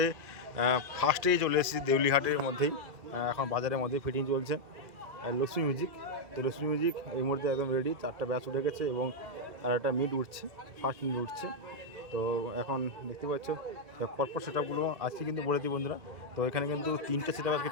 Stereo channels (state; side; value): late; left; 2.3 ms